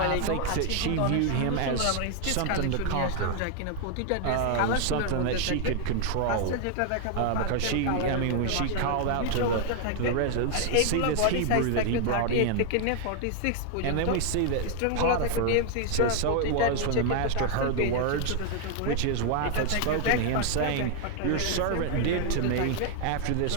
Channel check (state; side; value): different; both; correlation 0.00